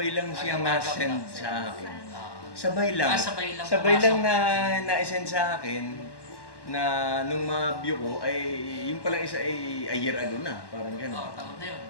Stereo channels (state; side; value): late; right; 1.1 ms